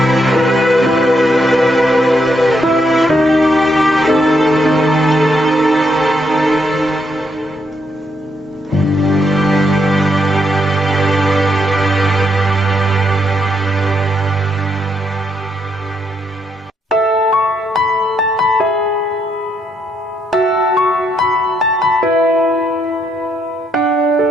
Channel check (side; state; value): both; normal; correlation 0.76